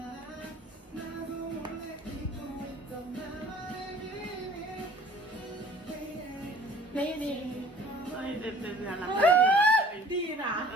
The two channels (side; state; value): both; normal; correlation 0.50